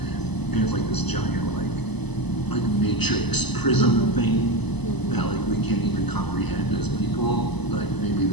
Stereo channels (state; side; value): late; right; 0.99 ms